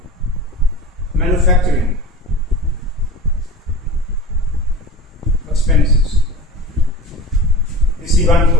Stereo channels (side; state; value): both; normal; correlation 0.36